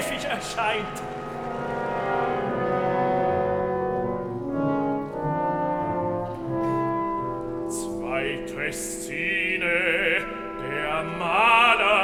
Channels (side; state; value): both; identical; correlation 1.00